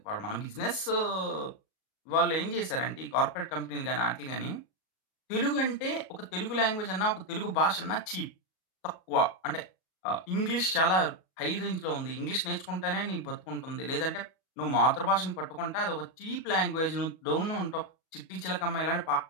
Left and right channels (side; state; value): right; late; 37 ms